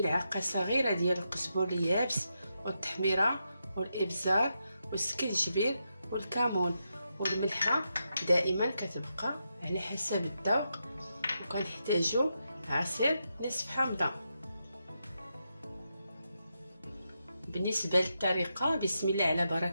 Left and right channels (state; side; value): inverted; both; correlation -0.85